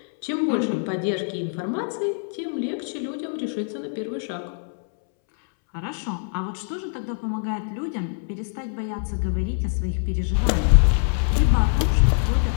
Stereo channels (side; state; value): right; silent; 63 dB below the other